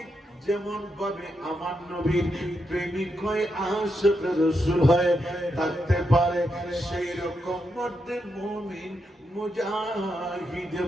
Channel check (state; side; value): normal; both; correlation 0.83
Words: যেমন ভাবে আমার নবীর প্রেমিক হয়ে আশিক রাসূল হয়ে থাকতে পারে, সেই রকম মধ্যে মুমিন মুজাহিদ